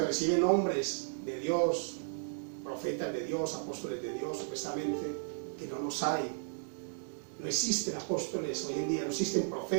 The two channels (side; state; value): left; silent; 55 dB below the other